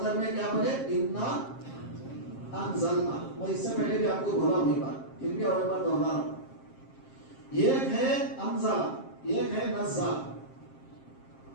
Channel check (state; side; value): late; right; 7.5 ms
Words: میں کیا پڑھے؟ انا انزلنا. میں اس سے پہلے بھی آپ کو بولا ہوئی بات، پھر بھی اور ایک بار دوہرا رہا ہوں. ایک ہے انزلہ، ایک ہے نزل.